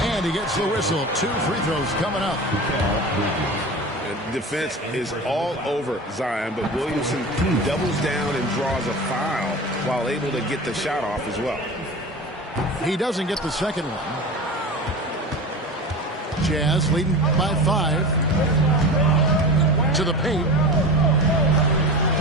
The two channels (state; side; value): normal; both; correlation 0.31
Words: And he gets the whistle. 2 free throws coming up. Defense is all over Zion, but Williamson doubles down and draws a foul while able to get the shot off as well. He doesn't get the second one. Jazz leading by 5. To the paint.